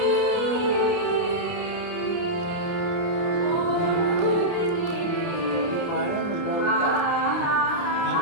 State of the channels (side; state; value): right; late; 29 ms